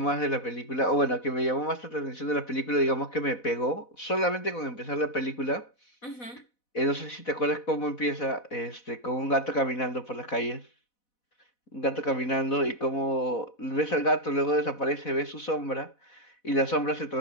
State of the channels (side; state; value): right; late; 4.1 ms